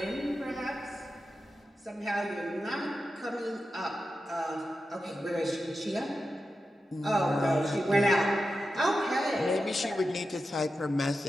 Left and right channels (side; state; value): both; normal; correlation 0.91